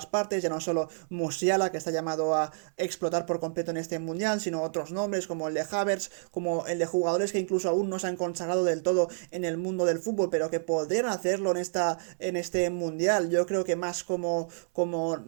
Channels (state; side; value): silent; left; 59 dB below the other